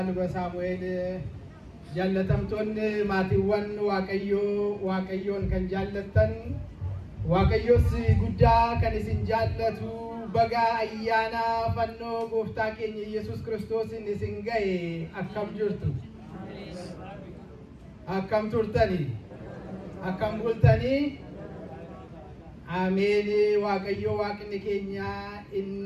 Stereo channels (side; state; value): both; identical; correlation 1.00